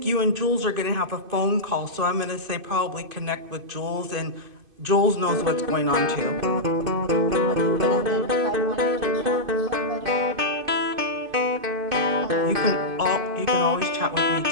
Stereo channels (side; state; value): left; late; 2.5 ms